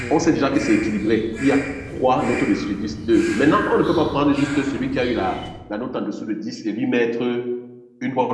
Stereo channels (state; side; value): identical; both; correlation 1.00